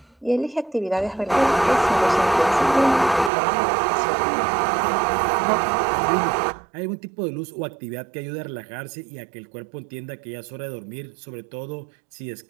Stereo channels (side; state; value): left; drops out; at 3.3 s